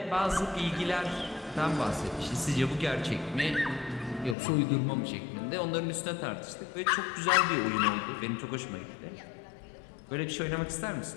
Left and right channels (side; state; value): right; drops out; at 4.4 s